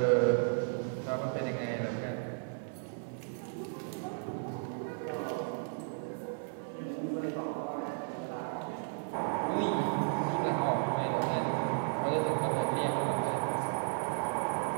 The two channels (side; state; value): left; silent; 55 dB below the other